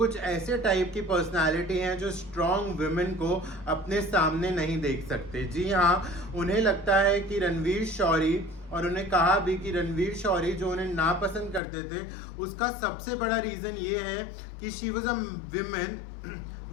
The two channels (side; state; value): right; drops out; at 11.6 s